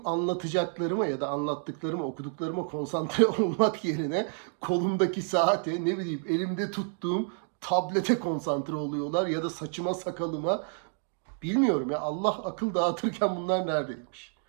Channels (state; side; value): silent; left; 56 dB below the other